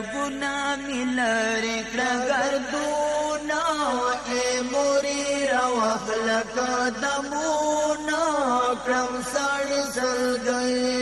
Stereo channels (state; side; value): identical; both; correlation 1.00